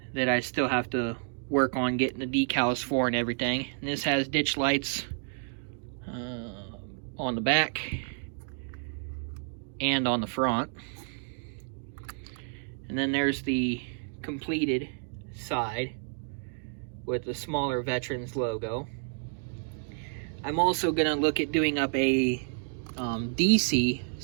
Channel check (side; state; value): left; silent; 56 dB below the other